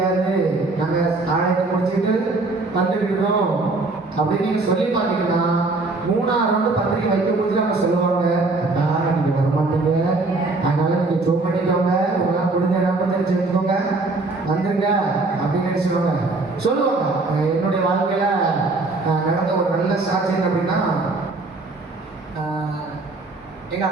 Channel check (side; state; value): left; quieter; 3.3 dB